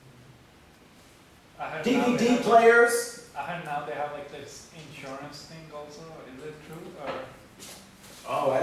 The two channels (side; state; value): both; identical; correlation 1.00